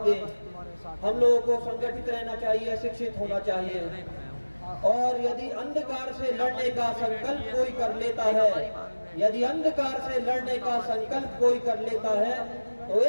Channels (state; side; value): inverted; both; correlation -1.00